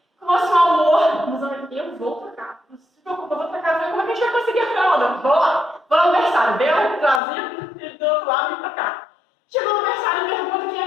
com o nosso amor, mas eu vou trocar. Não se preocupa, eu vou trocar. Como é que a gente vai conseguir a fralda? Vou lá. Vou no aniversário. Veio, trazia, ele do outro lado e pra cá. Chegou no aniversário e pergunta quem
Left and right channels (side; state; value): right; drops out; at 7.2 s